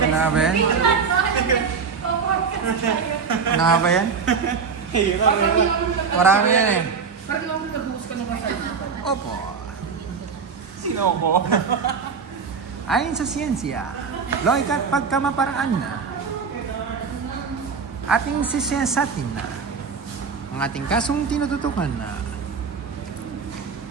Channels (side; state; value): left; quieter; 5.6 dB